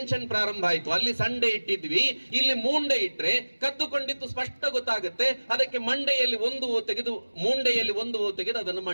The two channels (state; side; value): inverted; both; correlation -1.00